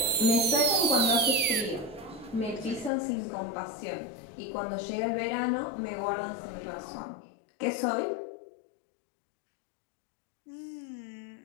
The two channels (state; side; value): drops out; right; at 2.9 s